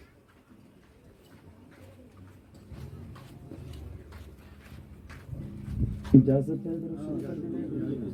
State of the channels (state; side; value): identical; both; correlation 1.00